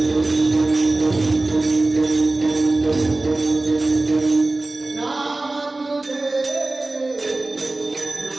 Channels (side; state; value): left; quieter; 3.0 dB